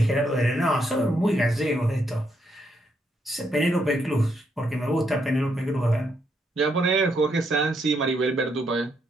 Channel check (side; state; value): both; normal; correlation 0.77